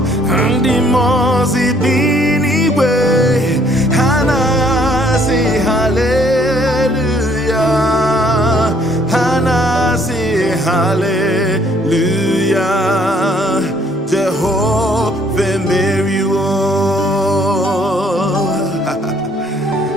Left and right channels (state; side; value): normal; both; correlation 0.63